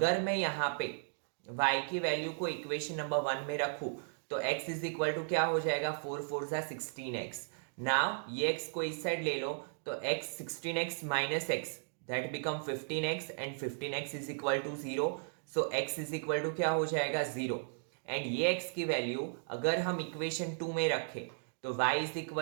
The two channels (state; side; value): silent; left; digital silence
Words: मैं यहाँ पे y की value को इक्वेशन नंबर 1 में रखूं तो x इज इक्वल टू क्या हो जाएगा, 4 4 16x। नाउ ये x को इस साइड ले लो तो x 16x minus x that become 15x and 15x is equal to 0, so x is equal to क्या हो जाएगा, 0। एंड ये x की वैल्यू अगर हम इक्वेशन 2 में रखें तो y is